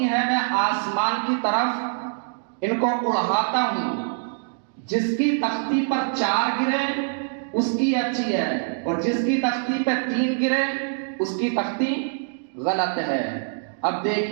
ہیں، میں آسمان کی طرف ان کو اڑاتا ہوں، جس کی تختی پر 4 گرے اس کی اچھی ہے، اور جس کی تختی پہ 3 گرے اس کی تختی غلط ہے۔ اب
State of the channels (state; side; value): silent; left; digital silence